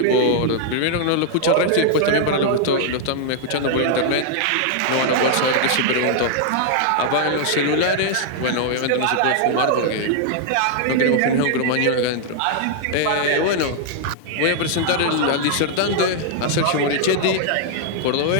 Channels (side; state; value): both; different; correlation -0.01